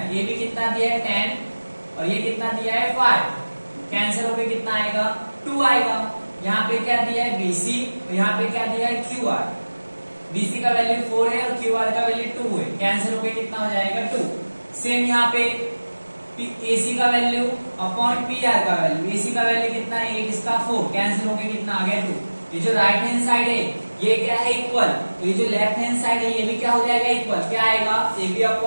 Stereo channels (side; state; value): both; inverted; correlation -1.00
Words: ए बी कितना दिया है 10 और ये कितना दिया है 5, कैंसिल होकर कितना आएगा 2 आएगा। यहाँ पे क्या दिया है बीसी और यहाँ पे क्या दिया है क्यू आर, बीसी का वैल्यू 4 है और क्यू आर का वैल्यू 2 है, कैंसिल होकर कितना हो जाएगा 2। सेम यहाँ पे एसी का वैल्यू अपॉन पी आर का वैल्यू, एसी का वैल्यू कितना है 8, इसका 4, कैंसिल होकर कितना आ गया 2। ये जो राइट हैंड साइड है ये क्या है इक्वल, तो ये जो लेफ्ट हैंड साइड है ये भी क्या हो जाएगा इक्वल, क्या आएगा A B